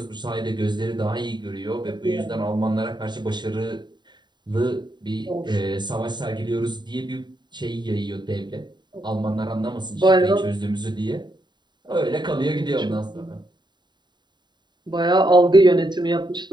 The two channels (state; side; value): late; left; 0.21 ms